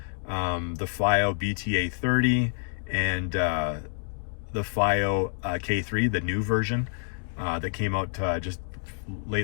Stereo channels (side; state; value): right; silent; digital silence